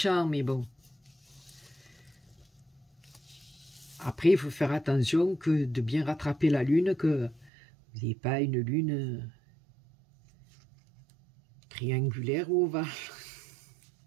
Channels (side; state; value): left; drops out; at 7.5 s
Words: mais bon. Après, il faut faire attention que de bien rattraper la lune, que vous n'ayez pas une lune triangulaire ou ovale.